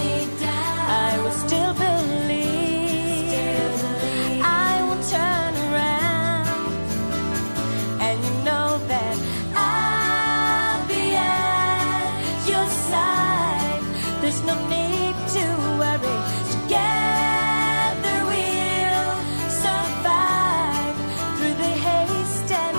I will still believe, I will turn around, and you know that I'll be at your side. There's no need to worry. Together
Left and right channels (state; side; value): inverted; both; correlation -1.00